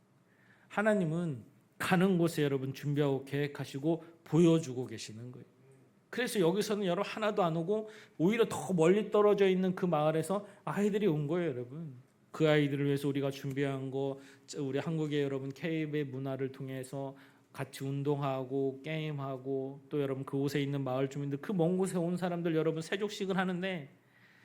하나님은 가는 곳에 여러분 준비하고 계획하시고 보여주고 계시는 거예요. 그래서 여기서는 여러분 하나도 안 오고 오히려 더 멀리 떨어져 있는 그 마을에서 아이들이 온 거예요 여러분. 그 아이들을 위해서 우리가 준비한 거 우리 한국의 여러분 K의 문화를 통해서 같이 운동하고 게임하고 또 여러분 그곳에 있는 마을 주민들 그 먼 곳에 온 사람들 여러분 세족식을 하는데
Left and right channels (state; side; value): identical; both; correlation 1.00